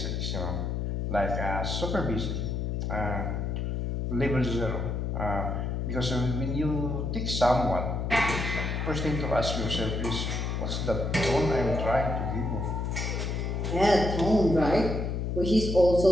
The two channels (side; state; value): left; noise; hum, 1 dB below the sound